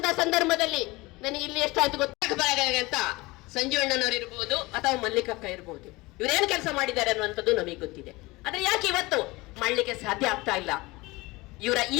ಸಂದರ್ಭದಲ್ಲಿ ನನಗೆ ಇಲ್ಲಿ ಎಷ್ಟಾಯ್ತು ಗೊತ್ತಾಗ ಅಂತ ಸಂಜೀವಣ್ಣನವರು ಇರ್ಬೋದು ಅಥವಾ ಮಲ್ಲಿಕಕ್ಕ ಇರ್ಬೋದು, ಇವರೇನು ಕೆಲಸ ಮಾಡಿದ್ದಾರೆ ಅನ್ನುವಂಥದ್ದು ನಮಗೆ ಗೊತ್ತಿದೆ. ಆದ್ರೆ ಯಾಕೆ ಇವತ್ತು ಮಾಡಲಿಕ್ಕೆ ಸಾಧ್ಯ ಆಗ್ತಾ ಇಲ್ಲ? ಇವರ ಈ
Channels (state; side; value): quieter; right; 22.2 dB